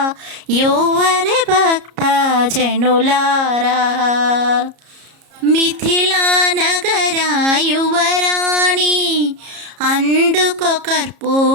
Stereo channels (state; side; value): late; left; 33 ms